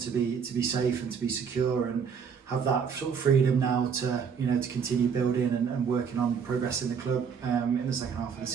be safe and to be secure and have that sort of freedom now to to continue building and working on progressing the club in the second half of the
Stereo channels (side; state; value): left; quieter; 6.6 dB